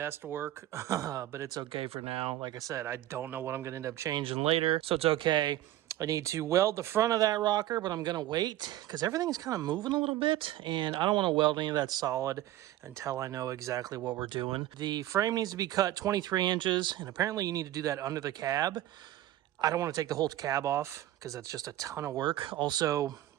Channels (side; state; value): left; quieter; 14.1 dB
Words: work, but it's okay for now. Like I said, I don't know what I'm going to end up changing later, so it's okay. I need to weld the front of that rocker, but I'm going to wait because everything's kind of moving a little bit, and I don't want to weld any of that solid until I know exactly what we're doing. The frame needs to be cut 23 inches, and apparently you need to do that under the cab. I don't want to take the whole cab off because that's just a ton of work. Also,